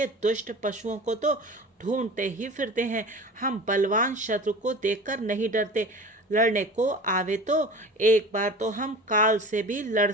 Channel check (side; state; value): both; normal; correlation 0.37